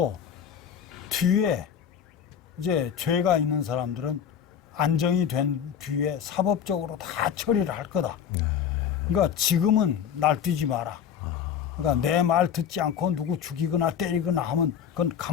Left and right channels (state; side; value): quieter; right; 8.4 dB